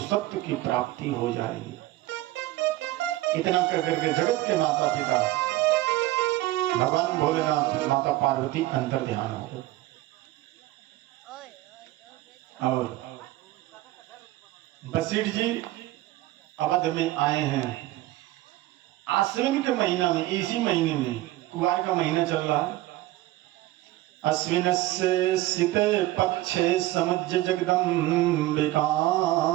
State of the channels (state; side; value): quieter; left; 16.8 dB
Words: की प्राप्ति हो जाएगी। इतना कहकर के जगत के माता पिता भगवान भोलेनाथ, माता पार्वती अंतर ध्यान हो गए। और वशिष्ठ जी अवध में आए हैं। आश्विन के महीना में, इसी महीने में, कुआर का महीना चल रहा है। अश्विन से शीते पक्षे समुज्य जगदम्बिकाम।